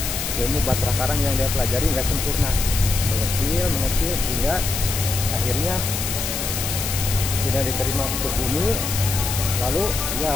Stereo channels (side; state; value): left; noise; hiss, 3 dB below the sound